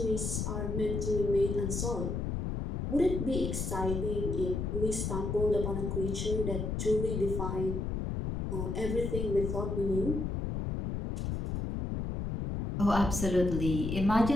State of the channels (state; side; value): noise; left; rumble, 2 dB below the sound